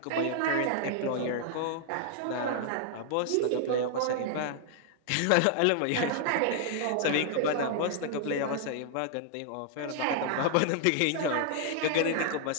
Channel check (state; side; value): different; both; correlation -0.01